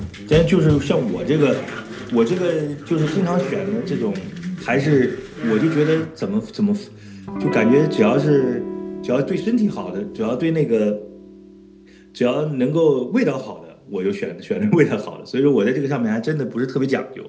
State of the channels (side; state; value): both; identical; correlation 1.00